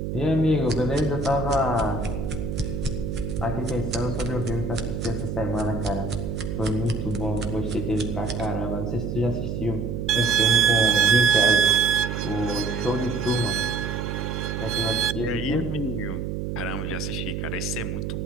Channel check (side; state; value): right; noise; hum, 3 dB below the sound